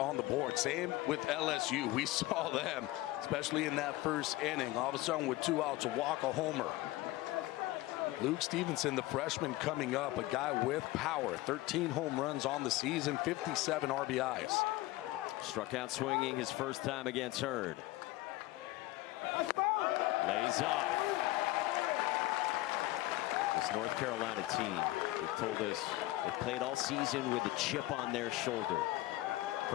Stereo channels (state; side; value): quieter; right; 18.0 dB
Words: the board. Same with LSU. We saw them, especially in that first inning. All of a sudden, with 2 outs, a walk, a homer. Luke Stevenson, the freshman coming up, a guy with power. 13 home runs on the season, 57 RBIs. Struck out swinging his first time against Hurd. Lays off. This North Carolina team, they've told us they've played all season with a chip on their shoulder.